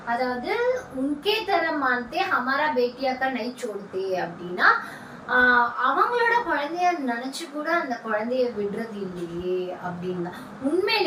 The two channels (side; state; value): both; identical; correlation 1.00